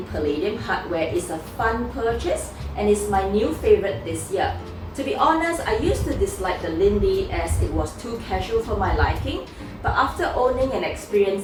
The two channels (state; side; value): identical; both; correlation 1.00